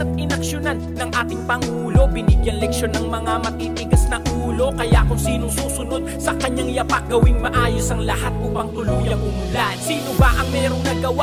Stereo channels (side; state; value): both; identical; correlation 1.00